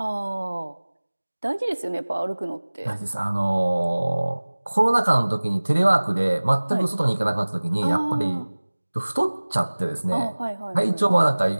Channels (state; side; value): inverted; both; correlation -1.00